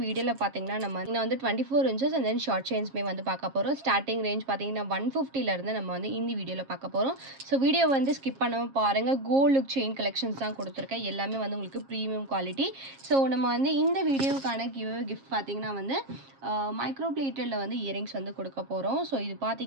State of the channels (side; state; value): left; late; 7.4 ms